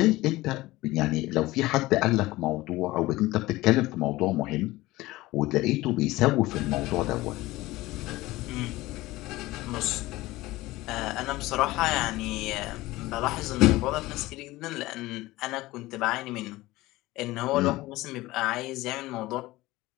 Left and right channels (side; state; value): right; quieter; 18.7 dB